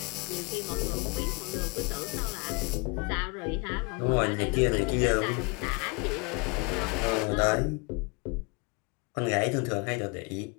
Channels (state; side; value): quieter; right; 30.1 dB